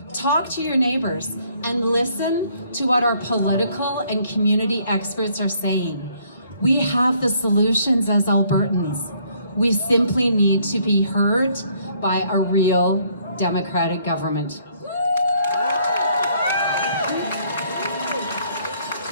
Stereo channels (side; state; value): both; inverted; correlation -0.65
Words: Talk to your neighbors and listen to what our political and community experts are saying. We have the solutions as Albertans. We simply need to be heard by a real democratic government.